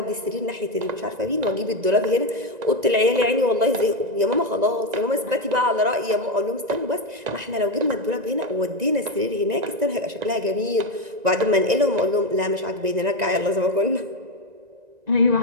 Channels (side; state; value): left; late; 1.9 ms